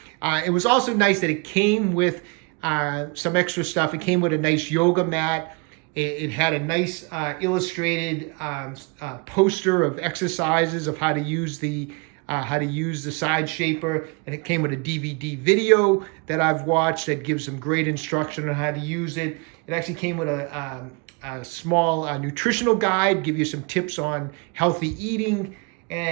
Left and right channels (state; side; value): quieter; left; 31.7 dB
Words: It was also nice that it came with some extra stuff. It came with a nice yoga mat. It had a nice illustrated poster of exercises of how to use the side shaper, and it came with a DVD video that I've watched that gives some great instruction on how to use it. It actually came with a small nutritional guide, give you some tips on healthy eating,